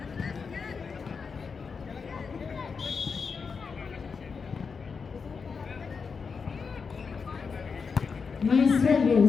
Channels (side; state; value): right; quieter; 5.4 dB